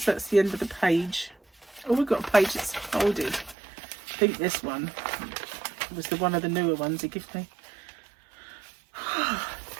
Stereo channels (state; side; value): drops out; left; at 3.6 s